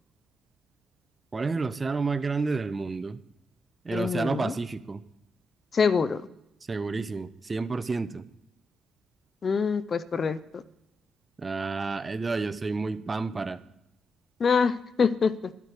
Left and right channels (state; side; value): normal; both; correlation 0.85